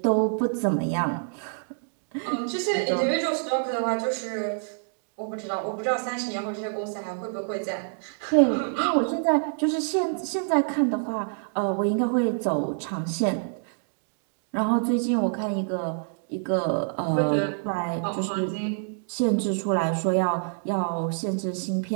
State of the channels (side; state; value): left; silent; digital silence